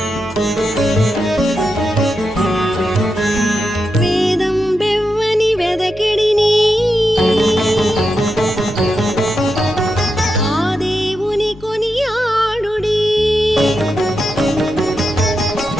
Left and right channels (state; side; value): noise; left; hum, 20 dB below the sound